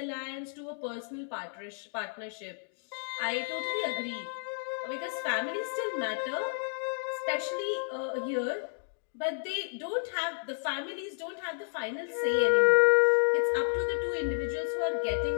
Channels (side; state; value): right; silent; digital silence